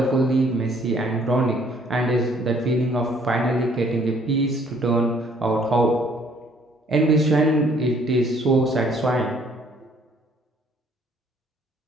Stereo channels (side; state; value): both; normal; correlation 0.62